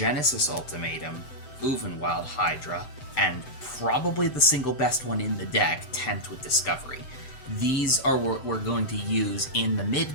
Ultimatum, Uvenwild Hydra, and probably the single best one in the deck, Tempt with Discovery. These are what we're going to use in the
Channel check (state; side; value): late; right; 7.7 ms